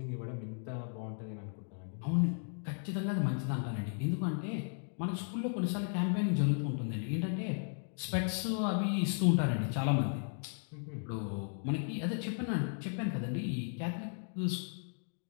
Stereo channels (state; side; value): silent; right; 54 dB below the other